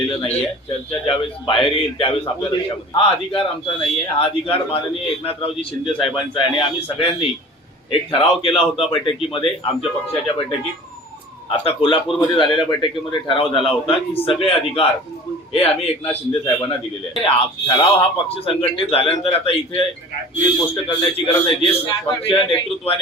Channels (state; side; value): normal; both; correlation 0.42